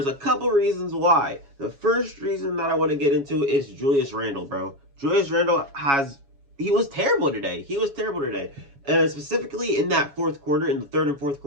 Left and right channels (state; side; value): late; left; 7.2 ms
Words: a couple reasons why. The first reason that I want to get into is Julius Randle, bro. Julius Randle he was terrible today. He was terrible today. And specifically in that fourth quarter, in the third and fourth